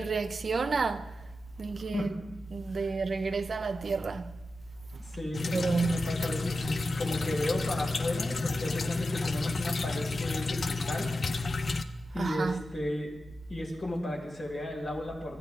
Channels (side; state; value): left; noise; hum, 23 dB below the sound